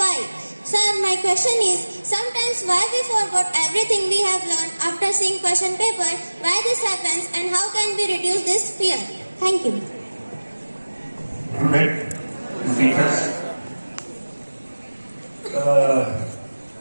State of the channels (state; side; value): inverted; both; correlation -1.00